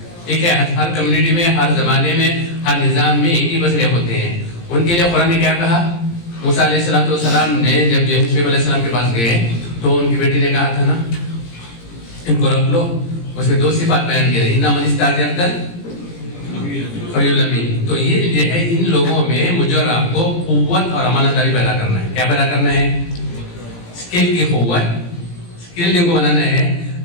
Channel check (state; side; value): late; right; 17 ms